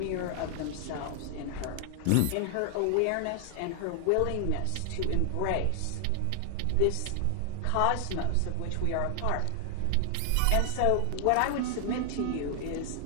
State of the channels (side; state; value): both; different; correlation 0.00